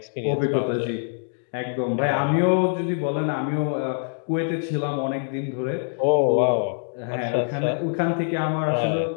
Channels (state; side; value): silent; right; digital silence